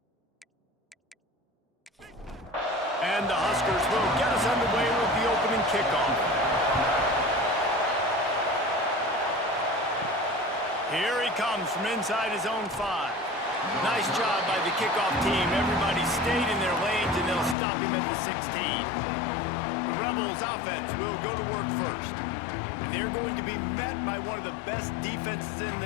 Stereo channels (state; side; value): drops out; right; at 17.6 s